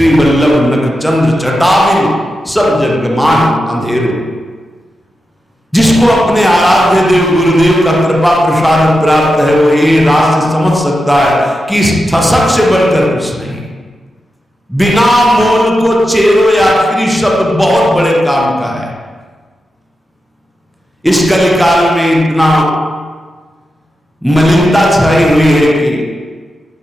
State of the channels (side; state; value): both; normal; correlation 0.89